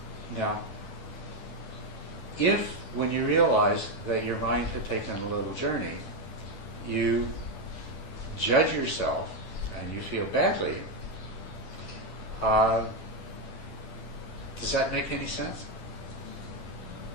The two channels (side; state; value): right; late; 10 ms